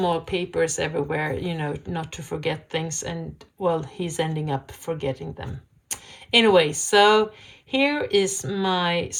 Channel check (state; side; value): identical; both; correlation 1.00